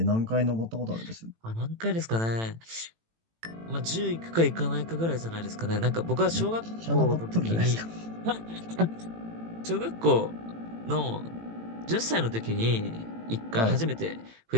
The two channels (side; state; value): left; late; 18 ms